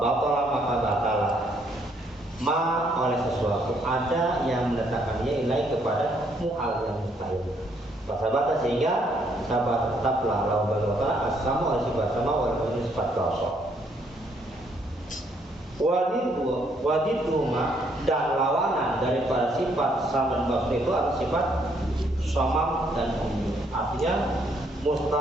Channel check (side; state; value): both; normal; correlation 0.70